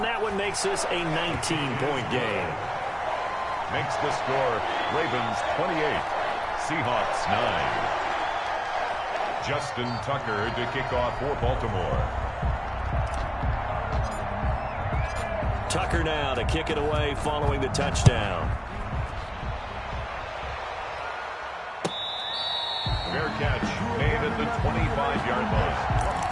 that one makes this a 19-point game. Makes the score Ravens 28, Seahawks 9. Justin Tucker to kick off for Baltimore. Tucker now to kick it away following the touchdown. Fair catch made at the 25-yard line.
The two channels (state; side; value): identical; both; correlation 1.00